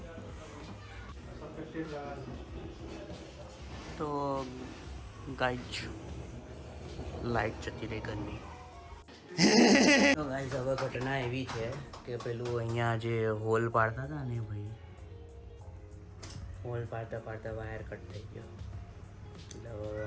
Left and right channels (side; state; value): both; identical; correlation 1.00